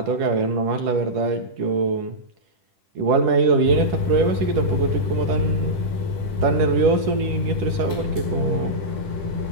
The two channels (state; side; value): late; left; 10 ms